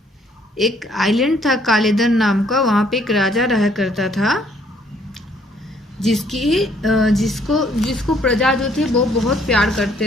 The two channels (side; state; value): both; normal; correlation 0.64